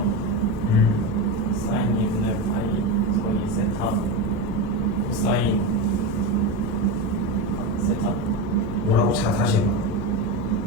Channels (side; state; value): both; normal; correlation 0.16